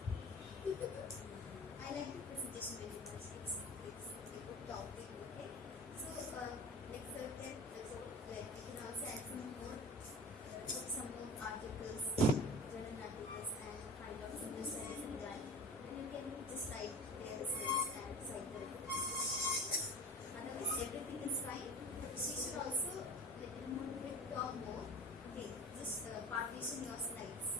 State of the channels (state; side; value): normal; both; correlation 0.36